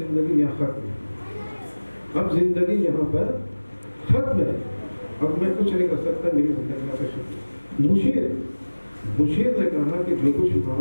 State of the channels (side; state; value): both; inverted; correlation -1.00